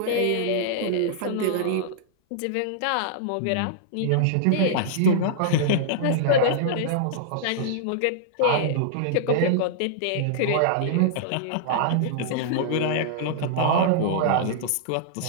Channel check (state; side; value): different; both; correlation -0.02